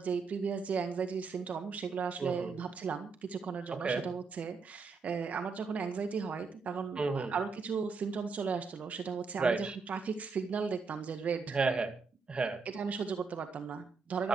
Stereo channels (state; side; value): quieter; left; 4.9 dB